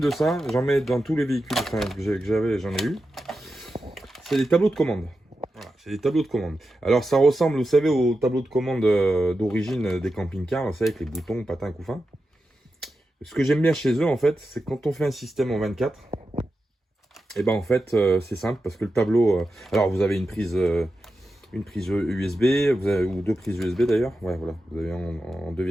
ça, j'en mets dans tous les véhicules que j'avais, j'en ai eu. C'est des tableaux de commande. Voilà, c'est des tableaux de commande. Alors ça ressemble, vous savez, aux tableaux de commande d'origine des camping-cars, vous savez, avec les boutons, patins, couffins. Ce que j'aime bien chez eux en fait, c'est quand on fait un système en 24. Et ben en fait c'est simple parce que le tableau, alors vous avez une prise USB, ou 2 prises USB d'ailleurs, ouais voilà, vous avez en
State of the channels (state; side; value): normal; both; correlation 0.90